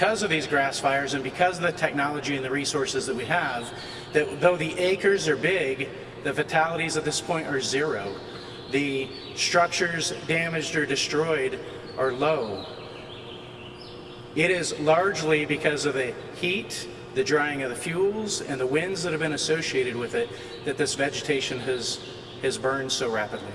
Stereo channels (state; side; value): identical; both; correlation 1.00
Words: of these grass fires and because of the technology and the resources that we have, that though the acres are big, the fatalities at this point are 0. The structures damaged or destroyed are low. It is largely because of the heat, the drying of the fuels, and the winds that have been associated with it that this vegetation has burned so rapidly.